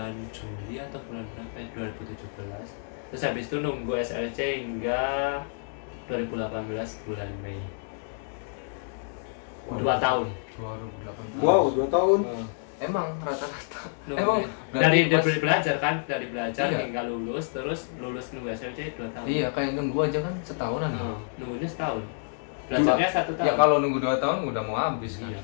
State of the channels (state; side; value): silent; right; 59 dB below the other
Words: Juli atau bulan berapa ya? 2017. Terus habis itu nunggu SLC hingga 2018 bulan Mei. 2 tahun. 2018. Wow, 2 tahun. Emang rata-rata. Nunggu. Emang dari pas- belajar kan, dari belajar Iya. hingga lulus, terus lulus nunggu SLC 2 tahun. Iya, kayak nunggu aja kan setahunan. Nah, nunggunya setahun. Belajarnya 1 tahun. Ya kalau nunggu 2 tahun udah mau habis kan. Iya,